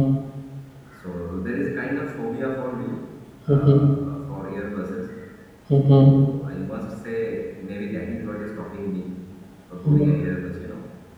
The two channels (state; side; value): identical; both; correlation 1.00